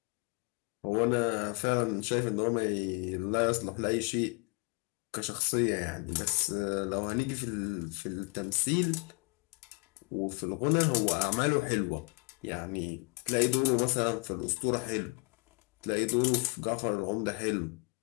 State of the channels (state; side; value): quieter; right; 28.5 dB